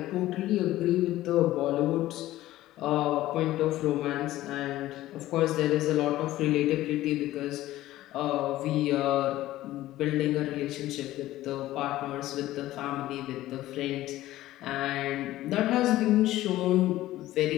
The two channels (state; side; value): quieter; right; 15.4 dB